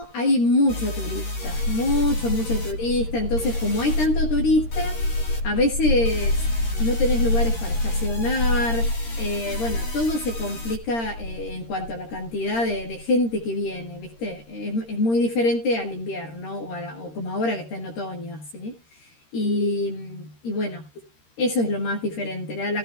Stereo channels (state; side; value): late; right; 13 ms